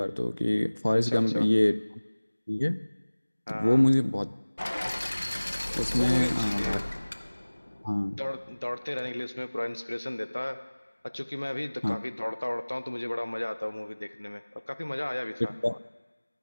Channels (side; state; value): both; inverted; correlation -1.00